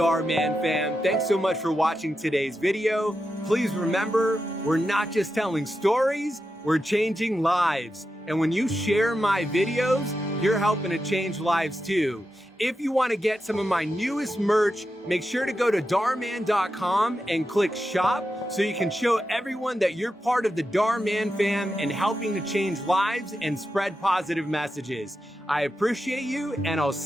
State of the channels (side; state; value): both; normal; correlation 0.89